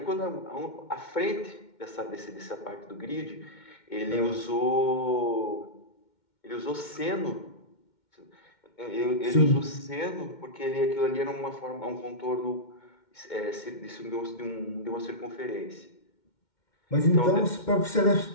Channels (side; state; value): right; late; 2.1 ms